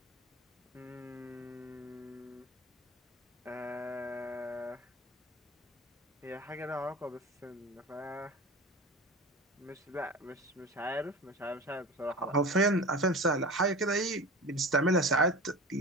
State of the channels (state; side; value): normal; both; correlation 0.33